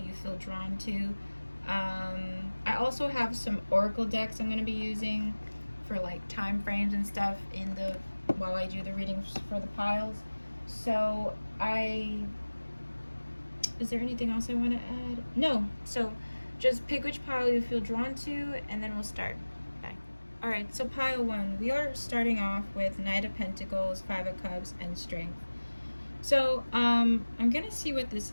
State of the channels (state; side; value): inverted; both; correlation -1.00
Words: feel drawn to. I also have some oracle decks I'm going to be using for like time frames and stuff while I do the readings for the piles. So is there anything else I want to add? No. So just pick which pile you feel drawn to and then we'll start. Bye. Alright, so pile 1. We are starting off with Knight of Pentacles, 5 of Cups, and Strength. So I'm going to see what this